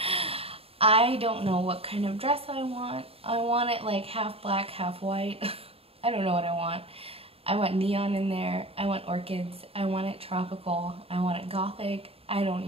I don't know what kind of dress I want. I want it like half black, half white. I don't know what I want. I want neon in there. I want orchids. I want it tropical. I want it gothic. I don't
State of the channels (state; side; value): late; left; 0.28 ms